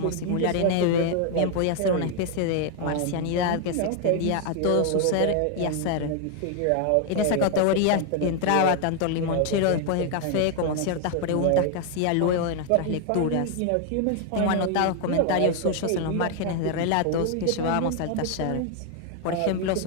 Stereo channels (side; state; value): both; different; correlation 0.01